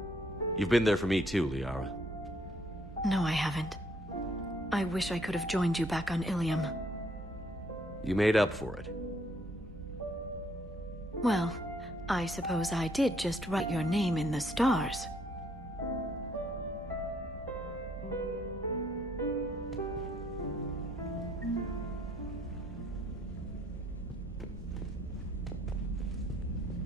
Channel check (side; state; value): both; normal; correlation 0.67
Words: You've been there for me too, Liara. No, I haven't. I wish I could have joined you back on Ilium. You made up for it. Well, I suppose I did just write your name in the stars.